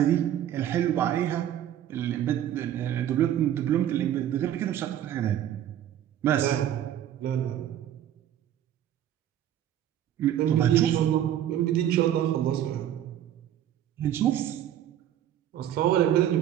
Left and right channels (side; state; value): left; quieter; 11.2 dB